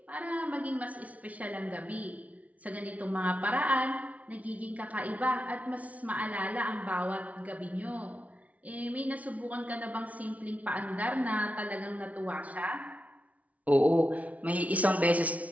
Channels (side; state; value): left; late; 0.069 ms